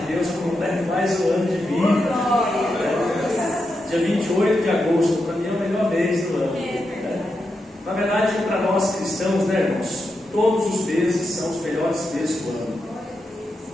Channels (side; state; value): both; normal; correlation 0.86